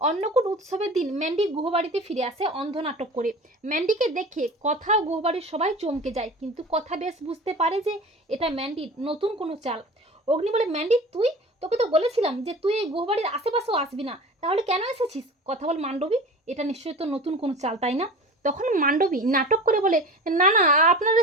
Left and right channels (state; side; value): normal; both; correlation 0.36